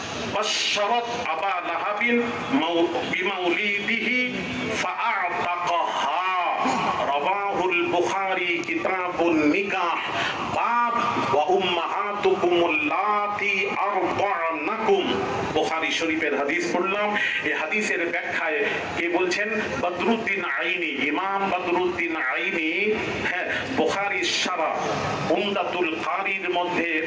بشرت أبا لهب بمولده فأعتقها رواه البخاري كتاب النكاح باب وأمهاتكم اللاتي أرضعنكم। বুখারী শরীফের হাদিস পড়লাম। এই হাদিসের ব্যাখ্যায় কে বলছেন? বদরুদ্দিন আইনি, ইমাম বদরুদ্দিন আইনি। হ্যাঁ, বুখারীর শারহ উমদাতুল কারীর মধ্যে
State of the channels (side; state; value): both; identical; correlation 1.00